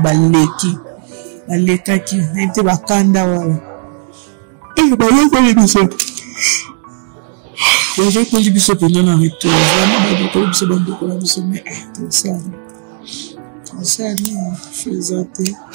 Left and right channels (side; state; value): left; silent; 71 dB below the other